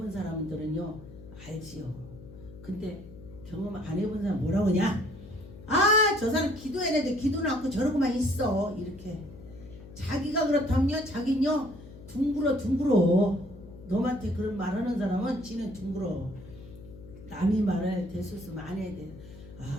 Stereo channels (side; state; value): left; noise; hum, 17 dB below the sound